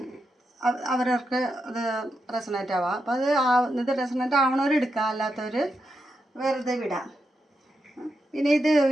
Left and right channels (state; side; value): normal; both; correlation 0.85